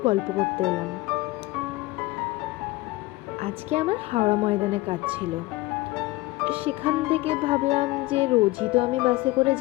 গল্প করতে এলাম। আজকে আমার হাওড়া ময়দানে কাজ ছিল। সেখান থেকে ভাবলাম যে রোজই তো আমি বাসে করে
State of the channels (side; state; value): right; quieter; 19.7 dB